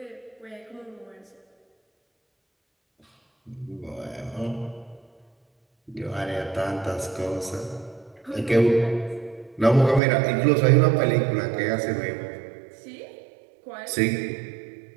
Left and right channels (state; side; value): drops out; left; at 10.0 s